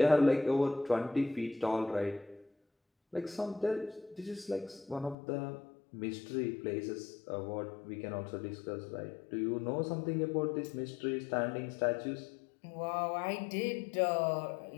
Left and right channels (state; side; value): drops out; right; at 5.2 s